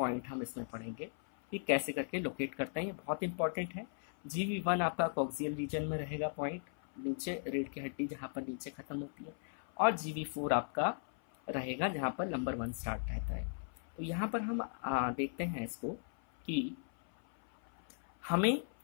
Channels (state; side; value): silent; right; 53 dB below the other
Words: हम इसमें पढ़ेंगे कि कैसे करके लोकेट करते हैं। ये बहुत इंपॉर्टेंट है। जीवी 1 आपका कॉक्सियल रीजन में रहेगा, पॉइंट नीचे रीढ़ की हड्डी जहाँ पर नीचे खत्म होती है, और जीवी 4 आपका रहेगा जहाँ पर नंबर 1 स्टार्ट रहता है। तो यहाँ पर हम देखते हैं इसको कि हमें